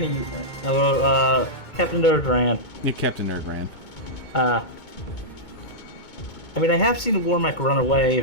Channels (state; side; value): late; right; 2.2 ms